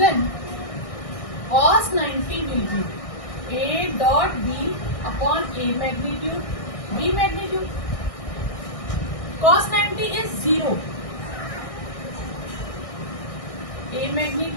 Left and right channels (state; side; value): late; right; 1.6 ms